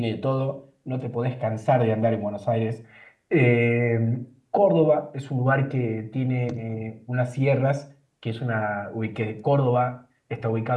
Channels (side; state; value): both; identical; correlation 1.00